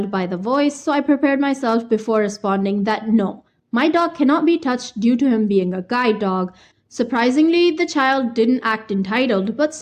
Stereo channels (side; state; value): both; identical; correlation 1.00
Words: by the voice, so I prepared myself before responding that no, my dog cannot be touched due to him being a guide dog. Surprisingly, the child didn't act entitled, but